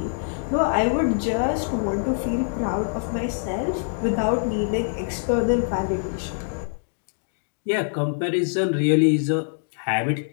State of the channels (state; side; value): silent; right; digital silence